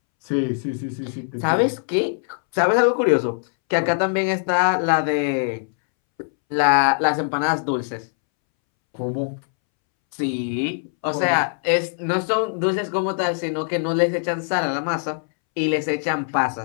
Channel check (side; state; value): right; silent; 64 dB below the other